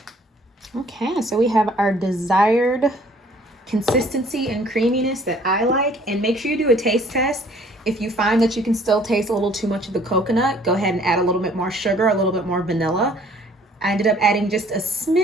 Okay, so we have our desired consistency and creaminess that I like. And make sure you do a taste test. If you find that you can still taste a little too much of the coconut, go ahead and add a little bit more sugar, a little bit more vanilla. I ended up adding just a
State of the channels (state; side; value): normal; both; correlation 0.57